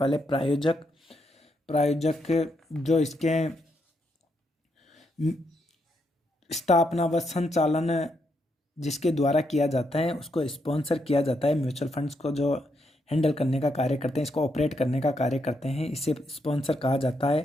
प्रायोजक जो इसके स्थापना व संचालन जिसके द्वारा किया जाता है उसको स्पॉन्सर किया जाता है। म्यूचुअल फंड्स को जो हैंडल करने का कार्य करते हैं, इसको ऑपरेट करने का कार्य करते हैं, इसे स्पॉन्सर कहा जाता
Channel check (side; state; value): both; normal; correlation 0.79